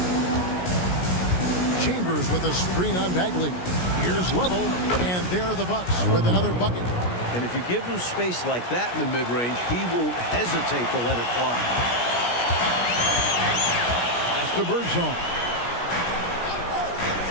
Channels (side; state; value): right; late; 17 ms